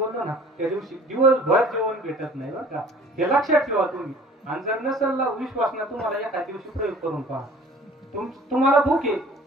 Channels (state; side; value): normal; both; correlation 0.49